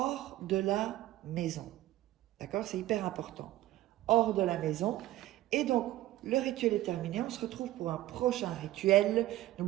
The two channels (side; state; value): left; quieter; 15.5 dB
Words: de la maison. D'accord? C'est hyper important. Hors de la maison. Et donc, le rituel est terminé. On se retrouve pour un prochain rituel.